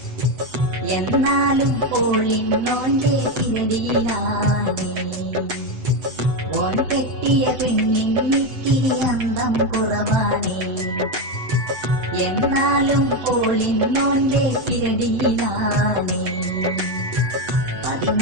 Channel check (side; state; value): left; late; 7.9 ms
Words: എന്നാലും ഓളിന്നോന്റെ പിരടിയിലാണേ. ഓൻ കെട്ടിയ പെണ്ണിനിത്തിരി അന്തം കുറവാണേ, എന്നാലും ഓളിന്നോന്റെ പിരടിയിലാണേ.